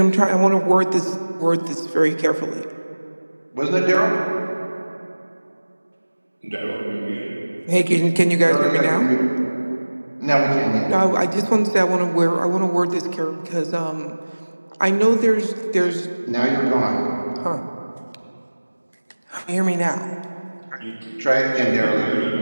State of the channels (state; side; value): inverted; both; correlation -1.00